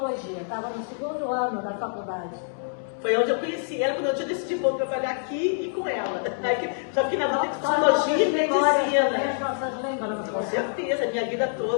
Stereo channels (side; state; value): right; silent; digital silence